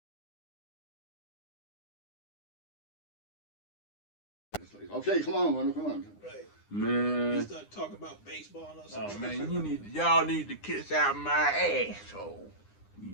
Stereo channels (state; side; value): late; right; 9.8 ms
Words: Okay, come on, Wendell, come on. Right. Man. You start talking about baseball and all Oh man, y'all need to kiss out my asshole.